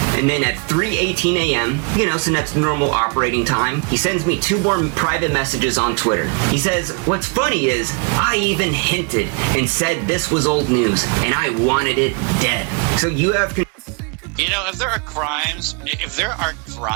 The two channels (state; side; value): quieter; left; 34.2 dB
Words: And then at 3:18 a.m., Sinet's normal operating time, he sends me 2 more private messages on Twitter. He says, what's funny is, I even hinted and said this was old news, and I wanted it dead. So you have... if there are